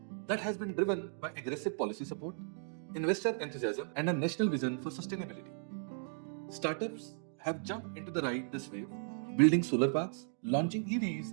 That has been driven by aggressive policy support, investor enthusiasm, and a national vision for sustainability. Startups have jumped into the ride this wave, building solar parks, launching EVs,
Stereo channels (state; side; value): silent; left; digital silence